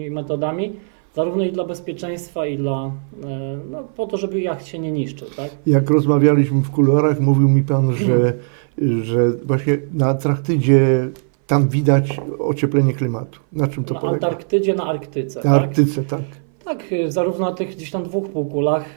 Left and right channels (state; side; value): silent; left; 60 dB below the other